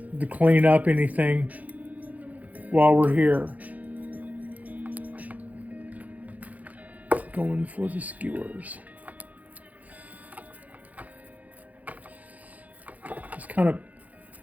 up anything while we're here. Going for the skewers. Just kind of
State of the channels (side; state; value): left; late; 0.076 ms